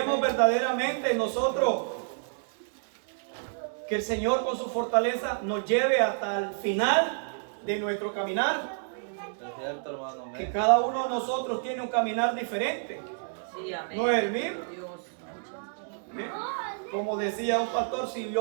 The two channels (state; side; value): silent; left; digital silence